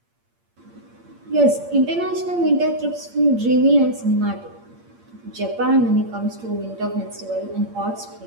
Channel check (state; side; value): late; left; 8.7 ms